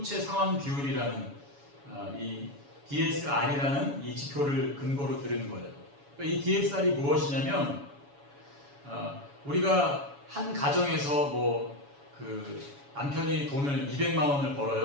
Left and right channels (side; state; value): left; late; 7.1 ms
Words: 상환 비율이라는 이 DSR이라는 이 지표를 근거로 들은 거예요. 그러니까 이 DSR이 무엇이냐면 우리가 한 가정에서 그 남편이 돈을 200만 원을